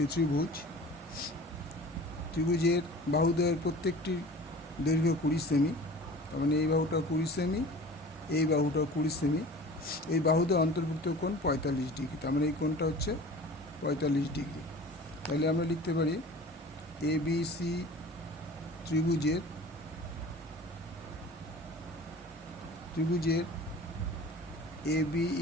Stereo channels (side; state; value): both; normal; correlation 0.41